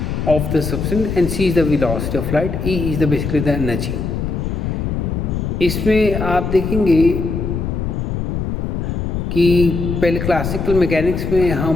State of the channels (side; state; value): left; noise; rumble, 2 dB below the sound